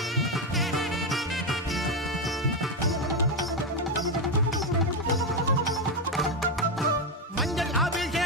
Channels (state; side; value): normal; both; correlation 0.08